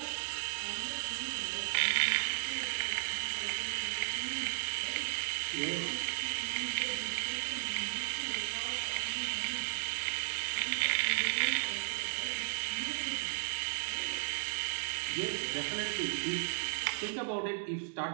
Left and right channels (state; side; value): silent; left; 54 dB below the other